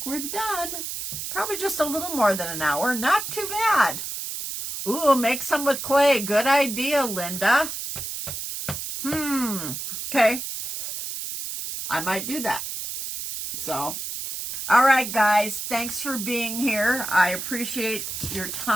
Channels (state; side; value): noise; right; hiss, 6 dB below the sound